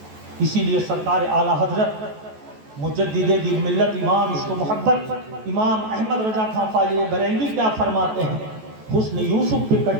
اسی لیے سرکار اعلیٰ حضرت مجدد دین ملت امام عشق و محبت امام احمد رضا خان فاضل بریلوی کیا فرماتے ہیں؟ حسن یوسف پہ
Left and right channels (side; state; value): left; late; 14 ms